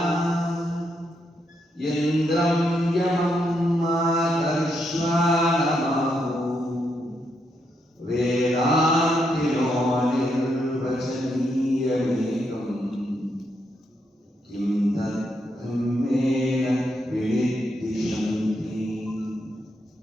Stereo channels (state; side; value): normal; both; correlation 0.80